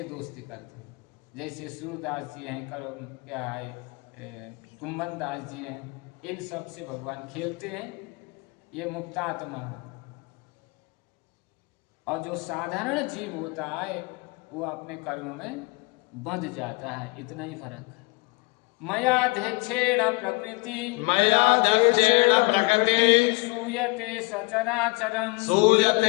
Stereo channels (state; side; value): quieter; right; 26.4 dB